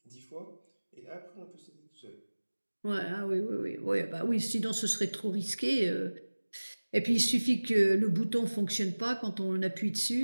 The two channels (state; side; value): inverted; both; correlation -1.00